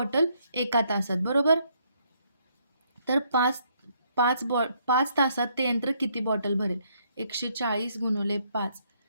एका तासात, बरोबर? तर 5 तासात ते यंत्र किती बॉटल भरेल? 140 गुणिले 5,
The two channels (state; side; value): inverted; both; correlation -0.70